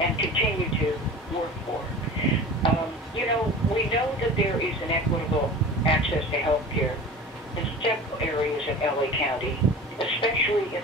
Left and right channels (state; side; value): normal; both; correlation 0.37